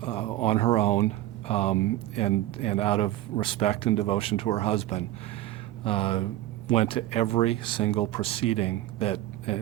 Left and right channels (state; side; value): quieter; left; 14.8 dB